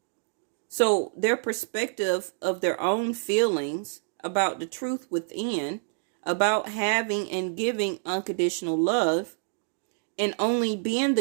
So their perspective of their own feelings about the truth within, about having and giving unconditional love, and only being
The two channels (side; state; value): left; silent; digital silence